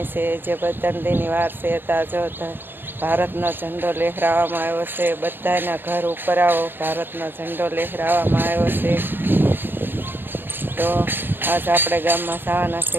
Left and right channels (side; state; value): left; late; 0.097 ms